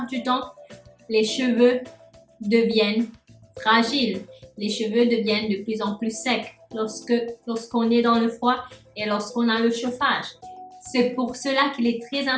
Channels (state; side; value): identical; both; correlation 1.00